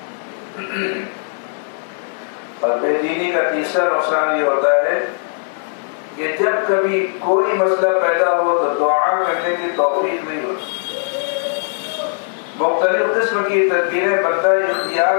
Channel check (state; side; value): silent; right; digital silence